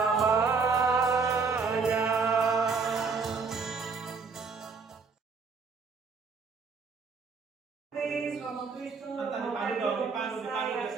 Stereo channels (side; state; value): left; quieter; 4.9 dB